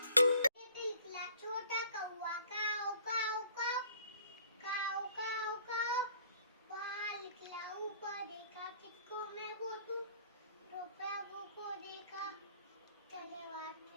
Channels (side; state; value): both; inverted; correlation -0.55